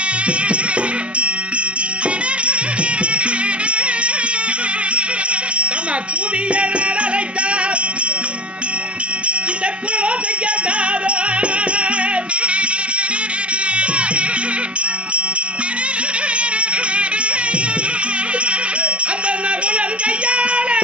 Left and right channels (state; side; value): late; left; 0.057 ms